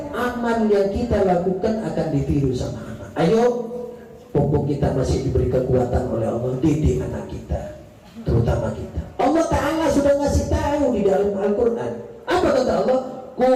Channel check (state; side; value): identical; both; correlation 1.00